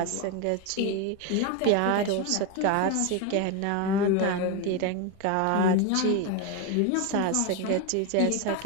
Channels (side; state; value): both; different; correlation 0.02